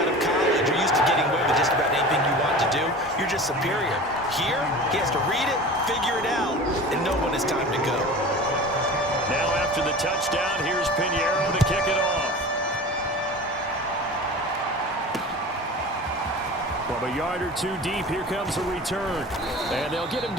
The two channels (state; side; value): normal; both; correlation 0.36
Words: of college. You're used to getting away with just about anything you want to do. You're just superior. Here, he has to read it, figure it out, and know when it's time to go. Now after the touchdown, here's Pinheiro to kick it off. From a yard or 2 deep, here comes a return. And they'll get him